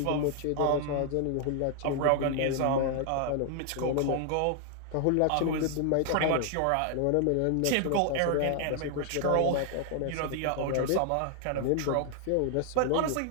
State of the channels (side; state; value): both; different; correlation 0.00